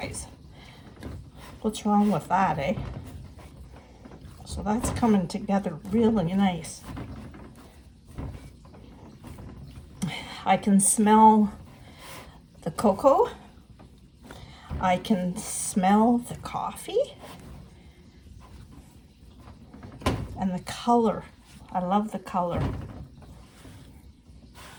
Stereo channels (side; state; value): both; identical; correlation 1.00